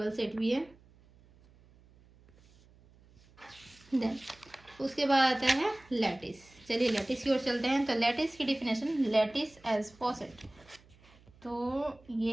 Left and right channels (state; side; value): noise; right; hum, 27 dB below the sound